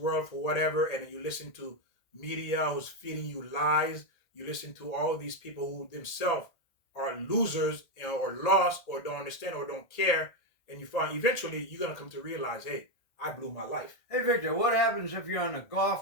for whatever, and you listen to media who's feeding you lies. You listen to all these people who themselves are losers, or lost, or don't understand, or don't care. And you find eventually you're gonna come to realize, hey, I blew my life. Hey Victor, what happens if you're on a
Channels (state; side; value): late; right; 1.8 ms